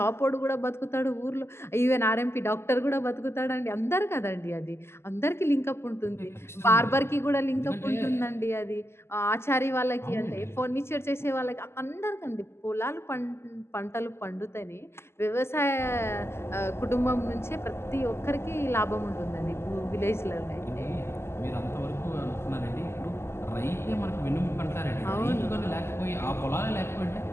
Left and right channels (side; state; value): right; late; 0.12 ms